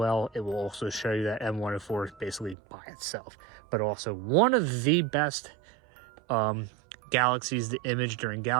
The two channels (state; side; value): drops out; left; at 2.6 s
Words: it will also show you that M104 is basically by itself, but also one of the best galaxies to image during